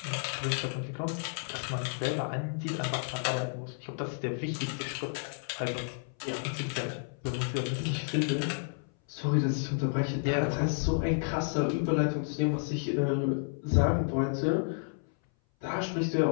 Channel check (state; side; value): silent; right; 57 dB below the other